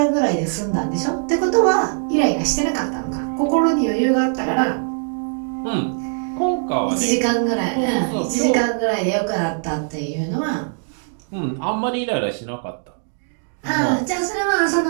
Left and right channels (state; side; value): silent; left; digital silence